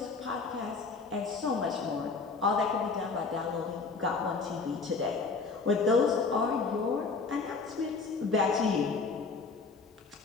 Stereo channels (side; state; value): right; quieter; 4.4 dB